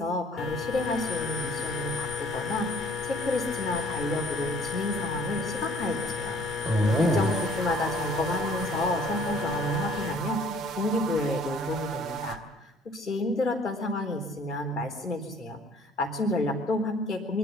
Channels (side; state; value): both; normal; correlation 0.56